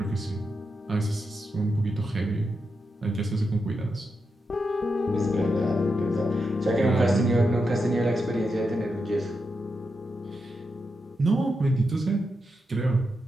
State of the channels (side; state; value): both; normal; correlation 0.86